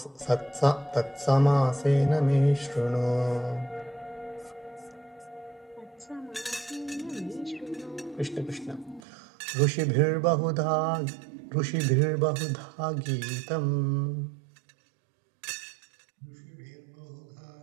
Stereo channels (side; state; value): left; drops out; at 9.0 s